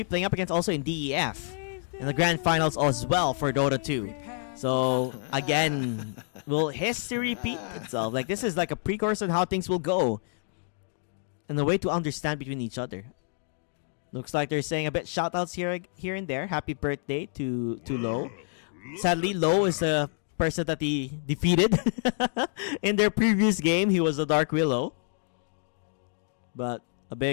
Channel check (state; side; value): silent; right; 59 dB below the other